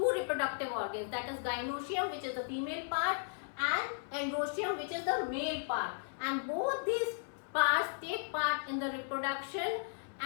reproductive organs, that is gynoecium, which is the female part, and androecium, which is the male part, and both these parts take part in the reproduction,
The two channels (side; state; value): right; silent; 54 dB below the other